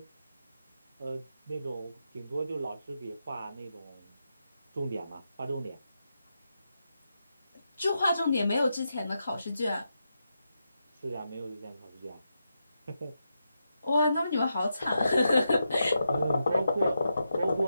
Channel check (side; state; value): both; inverted; correlation -0.86